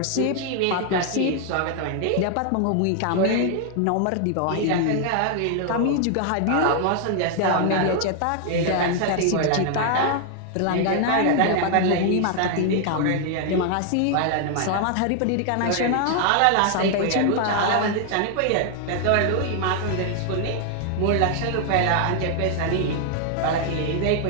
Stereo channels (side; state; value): both; different; correlation 0.00